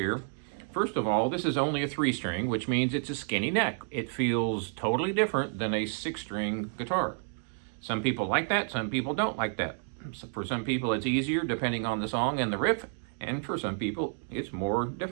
First of all, this is only a 3-string, which means it's a skinny neck. It feels totally different than a 6-string guitar. Some people like that, some people don't like that. So for some people it's easier depending on the song and the riff, and for some people it's more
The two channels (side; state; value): left; silent; 58 dB below the other